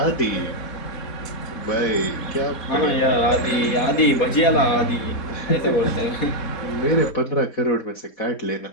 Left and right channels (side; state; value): right; late; 4.2 ms